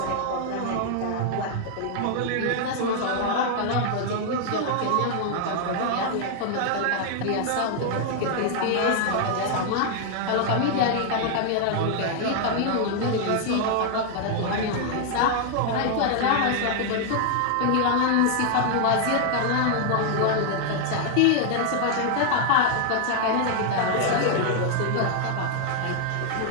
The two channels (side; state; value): both; different; correlation 0.00